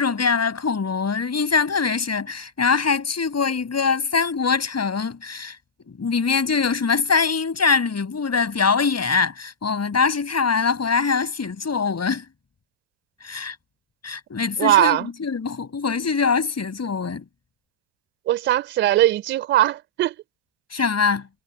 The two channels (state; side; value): normal; both; correlation -0.16